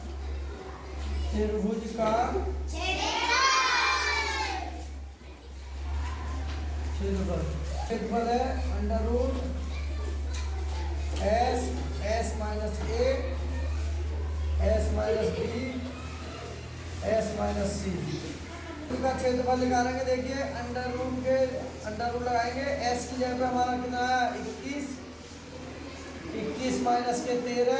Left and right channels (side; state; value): both; identical; correlation 1.00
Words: त्रिभुज का क्षेत्रफल है under root S minus A S minus B S minus C का क्षेत्रफल निकालेंगे। देखिए अंडर रूट लगाएंगे, एस की जगह पे हमारा कितना है 21 माइनस के 13,